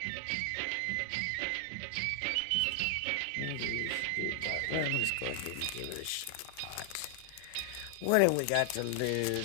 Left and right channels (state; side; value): different; both; correlation 0.00